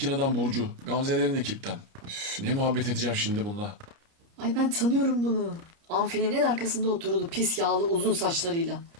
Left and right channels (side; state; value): left; late; 30 ms